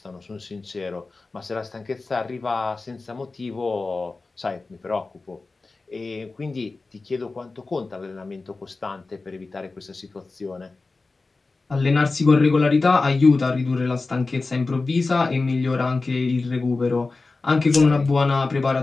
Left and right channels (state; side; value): quieter; right; 3.7 dB